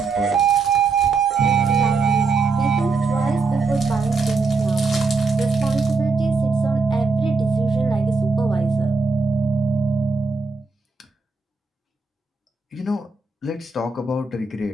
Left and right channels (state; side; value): quieter; left; 4.2 dB